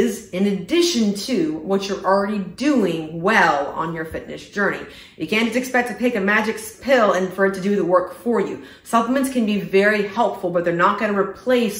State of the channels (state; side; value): identical; both; correlation 1.00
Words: in addition to what you're already doing well on your fitness journey. You can't just expect to take a magic pill and for it to do the work for you. Supplements can be very helpful, but they're not going to